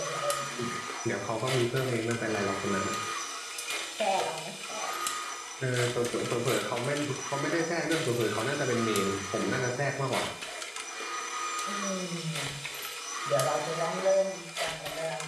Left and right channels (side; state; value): both; identical; correlation 1.00